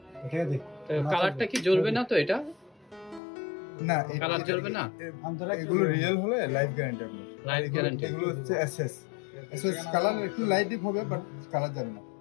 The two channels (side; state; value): right; drops out; at 3.2 s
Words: ঠিক আছে। কালারটা কি জ্বলবে না তো? এটা না, কালার জ্বলবে না। এগুলো রিয়েল হলে লাইফ গ্যারান্টি আপনার। Life guarantee. এগুলো হচ্ছে এসএস। এসএস কালার একটু লাইট ডিপ হবে, বাট কালার যাবে না।